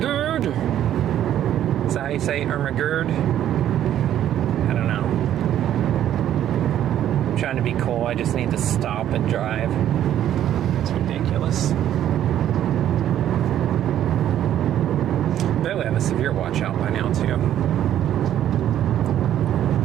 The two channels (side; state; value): left; quieter; 11.2 dB